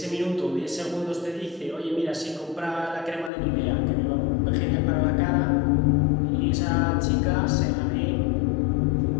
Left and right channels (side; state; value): right; drops out; at 3.3 s